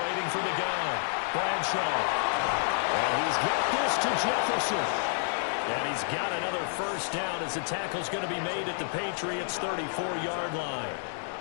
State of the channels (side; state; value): right; silent; digital silence